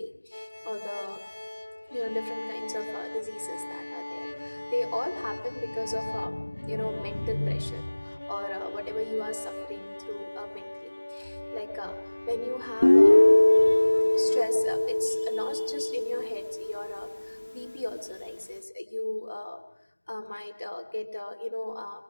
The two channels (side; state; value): both; inverted; correlation -1.00